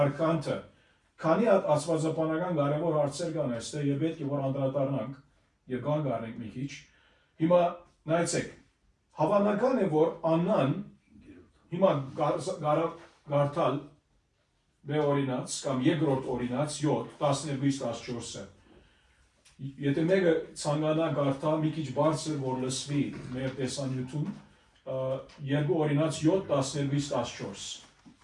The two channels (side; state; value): both; identical; correlation 1.00